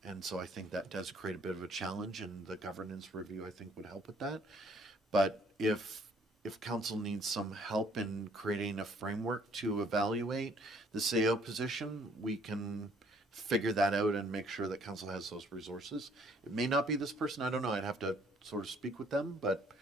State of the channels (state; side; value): normal; both; correlation 0.61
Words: And so I think that does create a bit of a challenge, and the governance review I think would help with that. But if council needs some help in creating a framework to evaluate the CAO position, we can figure that out and make sure that council has those resources. It may not be this person, I don't know, I'd have to sort of speak with them, but